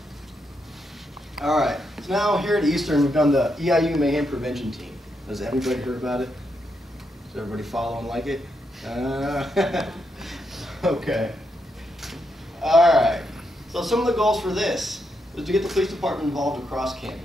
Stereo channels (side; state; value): both; normal; correlation 0.81